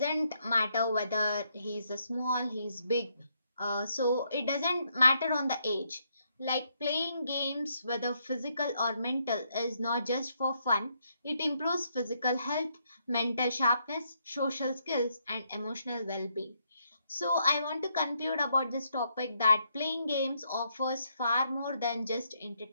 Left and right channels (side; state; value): both; inverted; correlation -0.75